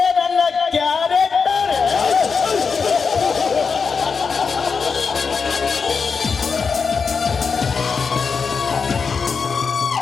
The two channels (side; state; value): right; quieter; 5.4 dB